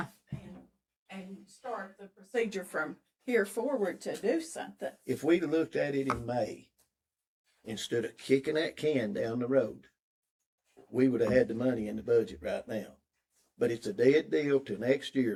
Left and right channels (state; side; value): identical; both; correlation 1.00